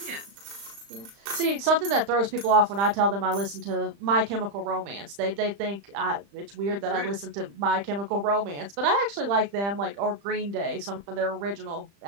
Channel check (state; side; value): late; left; 35 ms